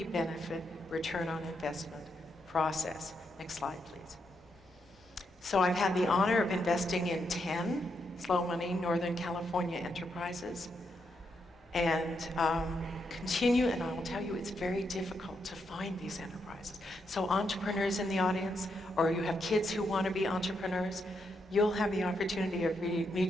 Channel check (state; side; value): normal; both; correlation 0.80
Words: benefit return on investment process. Next slide, please. So I've had the honor of investing in 10 Slow Money Northern California enterprises, and continue, and I will tell you, it's very difficult to find these enterprises. So entrepreneurs in the audience, or you have kids who want to be entrepreneurs, you'll have the opportunity of